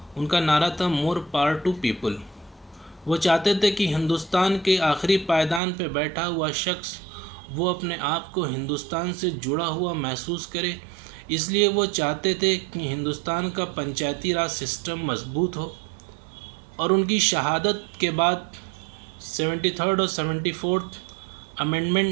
उनका नारा था मोर पावर टू पीपल। वो चाहते थे कि हिंदुस्तान के आखिरी पायदान पर बैठा हुआ शख्स वो अपने आप को हिंदुस्तान से जुड़ा हुआ महसूस करे। इसलिए वो चाहते थे कि हिंदुस्तान का पंचायती राज सिस्टम मजबूत हो। और उनकी शहादत के बाद 73rd और 74th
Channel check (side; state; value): left; drops out; at 5.6 s